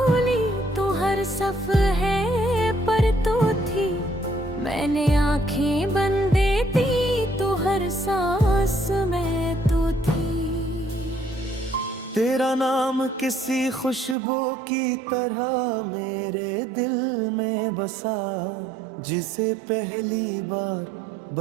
तो हर सफ़हे पर तो थी, मैंने आंखें बंद दी तो हर सांस में तो थी। तेरा नाम किसी खुशबू की तरह मेरे दिल में बसा, जिसे पहली बार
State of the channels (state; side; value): drops out; left; at 14.2 s